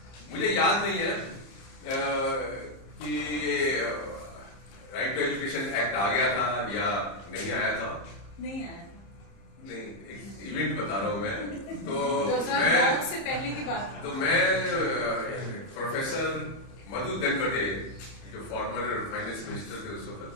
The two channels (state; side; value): late; right; 30 ms